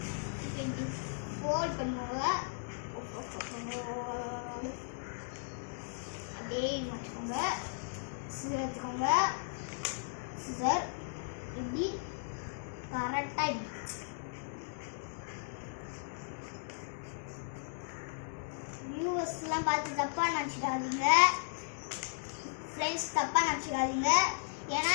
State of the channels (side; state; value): right; silent; digital silence